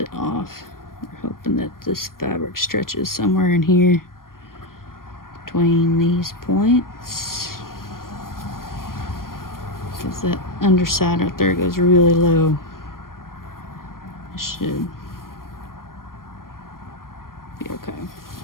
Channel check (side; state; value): right; late; 0.91 ms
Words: off. We're hoping that this fabric stretches somewhere in here between these points. Because that underside right there goes really low. It should be okay.